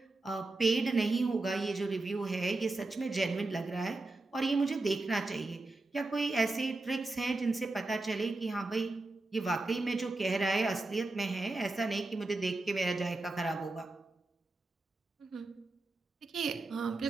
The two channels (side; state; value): left; quieter; 3.1 dB